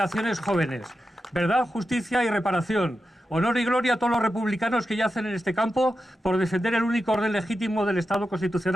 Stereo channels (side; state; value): both; normal; correlation 0.90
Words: jóvenes. Verdad, justicia y reparación. Honor y gloria a todos los republicanos que yacen en este campo por defender el único orden legítimo del Estado